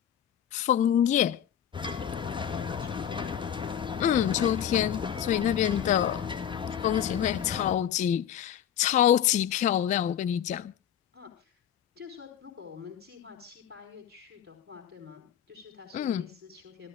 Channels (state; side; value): quieter; right; 9.6 dB